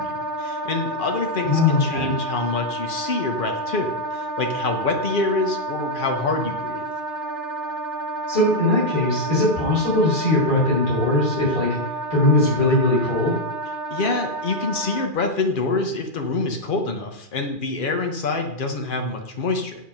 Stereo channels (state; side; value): late; right; 2.4 ms